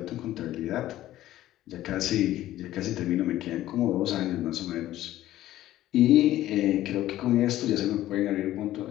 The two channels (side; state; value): right; quieter; 14.2 dB